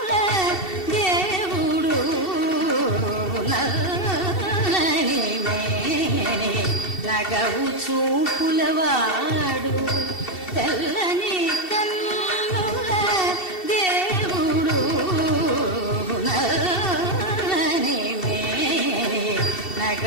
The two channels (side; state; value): right; late; 2.7 ms